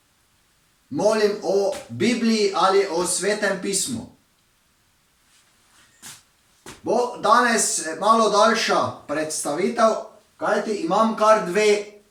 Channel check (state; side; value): identical; both; correlation 1.00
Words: molim o Bibliji ali o Svetem pismu. Bo danes malo daljša predstavitev, kajti imam kar dve